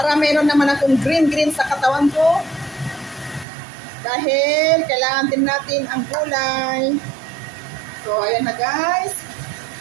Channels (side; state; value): left; drops out; at 3.5 s